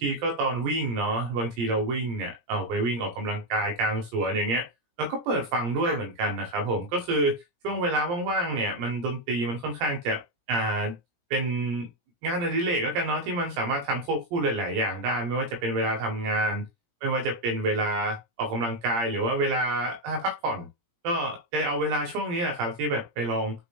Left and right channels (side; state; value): left; late; 17 ms